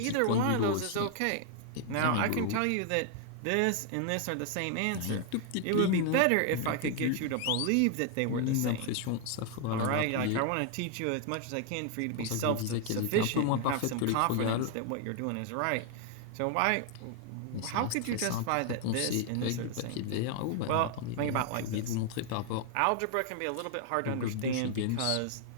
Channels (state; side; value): different; both; correlation 0.00